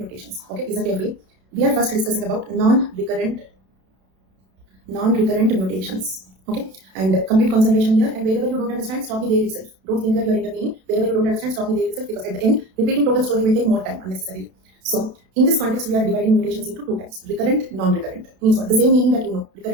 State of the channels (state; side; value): late; left; 32 ms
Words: Okay, listen carefully. We are first discussing about non-recurrent mutations. Okay, and complete concentration here. And wherever you don't understand, stop me there itself. Don't think that you are intervening. Wherever you don't understand, stop me there itself, because at the end, repeating total story will take more time unnecessarily. So, in this context, we are dividing mutations into 2 types: recurrent, non-recurrent. Means what? The same meaning that you know.